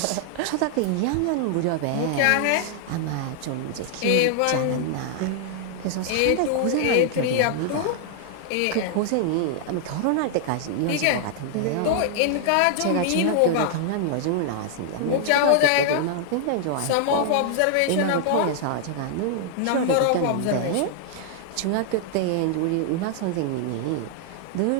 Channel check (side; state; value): both; different; correlation -0.01